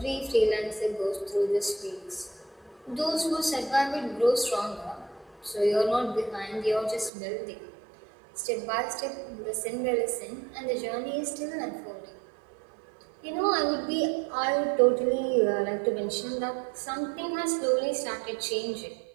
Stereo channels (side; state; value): left; drops out; at 7.1 s